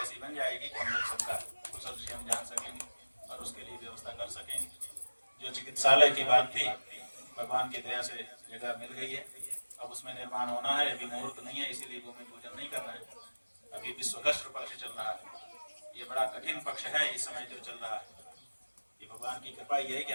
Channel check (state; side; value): inverted; both; correlation -1.00